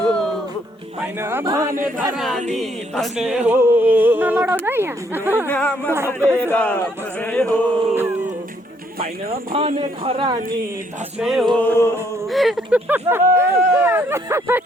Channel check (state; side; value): normal; both; correlation 0.69